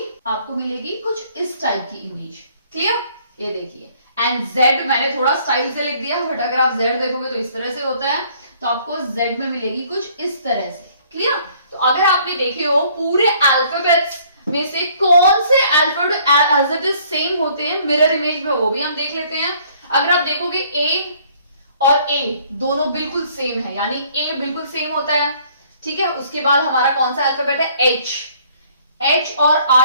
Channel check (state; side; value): inverted; both; correlation -0.60